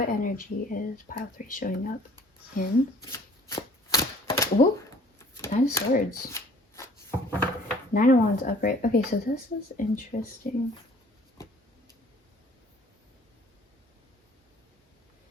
energy is pile 3 showing up in? Ooh, 9 of Swords. 9 of Wands upright. Okay, so this is interesting.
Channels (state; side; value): normal; both; correlation 0.53